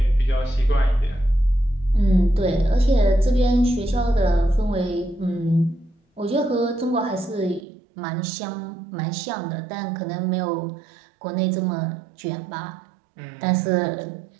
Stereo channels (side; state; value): left; drops out; at 7.7 s